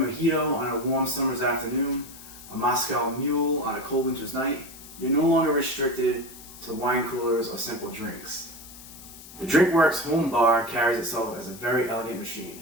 on a warm summer's afternoon, a Moscow Mule on a cold winter's night. You're no longer restricted to wine coolers or simple drinks. The Drinkworks Home Bar carries itself as a very elegant machine.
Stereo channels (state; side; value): noise; left; hiss, 17 dB below the sound